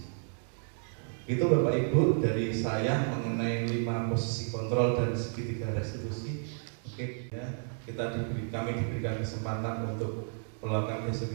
Itu Bapak Ibu dari saya mengenai 5 posisi kontrol dan segitiga restitusi. Oke ya, kami diberikan kesempatan untuk melakukan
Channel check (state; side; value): silent; left; 57 dB below the other